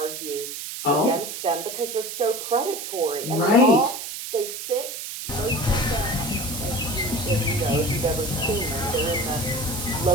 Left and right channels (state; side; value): noise; right; hiss, 7 dB below the sound